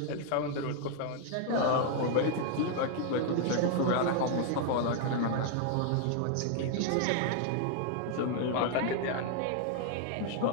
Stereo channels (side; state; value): both; different; correlation 0.00